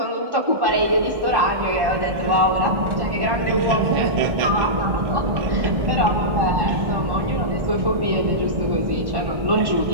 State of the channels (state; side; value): late; left; 1.1 ms